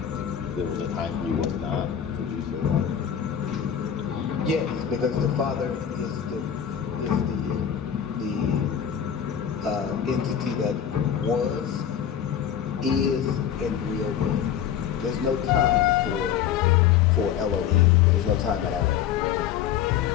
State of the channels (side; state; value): right; quieter; 9.2 dB